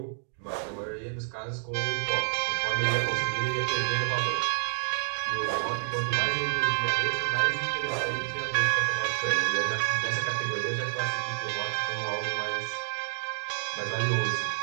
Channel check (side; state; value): left; silent; 59 dB below the other